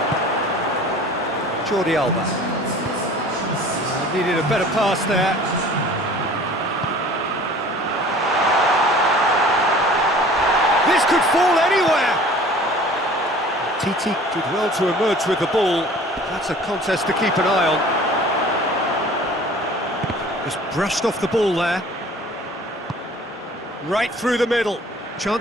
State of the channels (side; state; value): both; normal; correlation 0.47